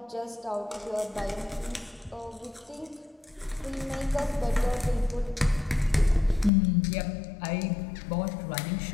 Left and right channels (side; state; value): right; drops out; at 6.5 s